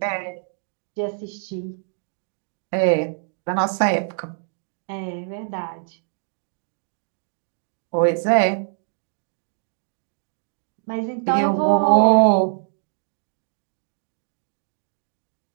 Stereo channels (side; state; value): left; silent; digital silence